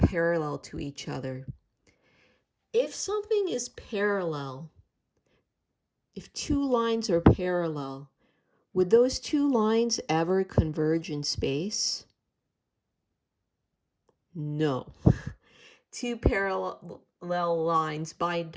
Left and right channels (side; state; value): both; identical; correlation 1.00